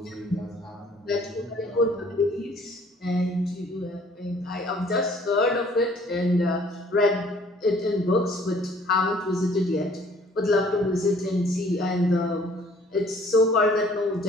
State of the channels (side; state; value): both; normal; correlation 0.57